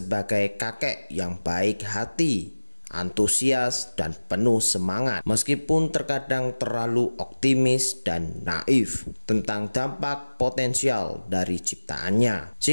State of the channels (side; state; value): both; inverted; correlation -1.00